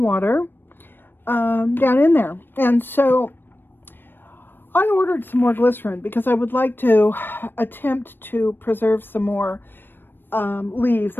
water down in there. And so I ordered some more glycerin because I would like to attempt to preserve some more leaves.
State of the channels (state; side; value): late; right; 0.097 ms